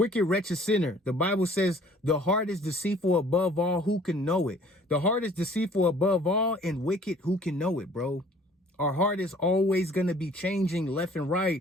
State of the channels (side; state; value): both; normal; correlation 0.54